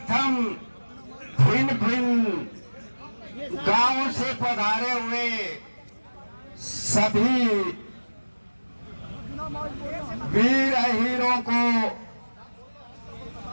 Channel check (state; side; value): inverted; both; correlation -1.00